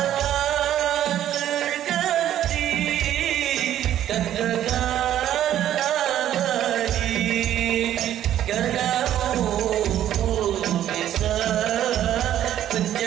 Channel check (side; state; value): left; quieter; 11.6 dB